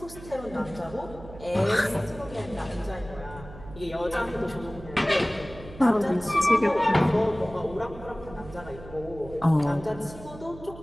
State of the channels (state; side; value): noise; right; hum, 16 dB below the sound